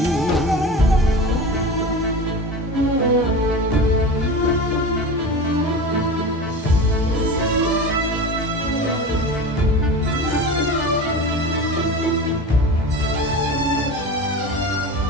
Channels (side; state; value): both; normal; correlation 0.31